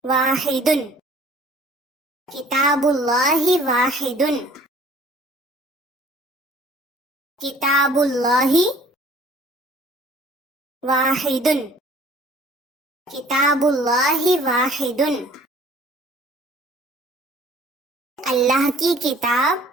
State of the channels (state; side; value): normal; both; correlation 0.54